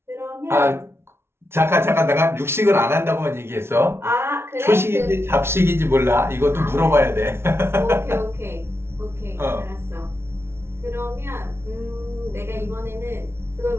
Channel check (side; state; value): left; late; 0.12 ms